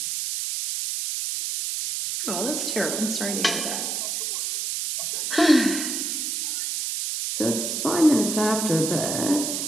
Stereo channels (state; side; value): noise; right; hiss, 2 dB below the sound